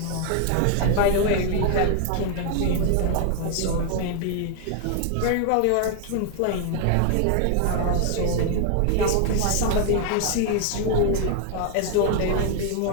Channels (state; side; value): different; both; correlation 0.00